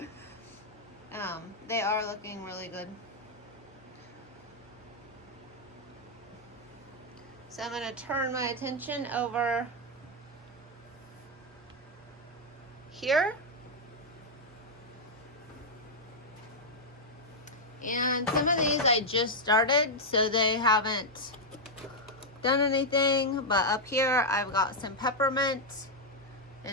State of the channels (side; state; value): both; normal; correlation -0.02